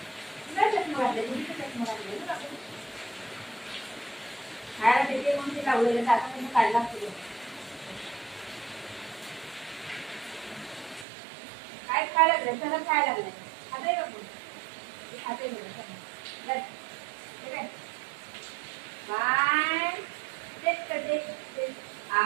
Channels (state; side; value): drops out; left; at 11.1 s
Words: चष्मा घातले चष्मा घातले खायला देते म्हणून ते लावलेलं आता तुम्ही काढला असतो काय खायला लागलं सगळं खायला लागलंय खाते का कोण खाते बघ बाय तेच करते